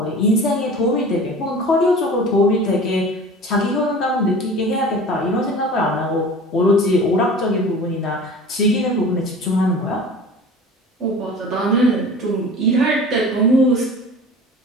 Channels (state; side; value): normal; both; correlation 0.39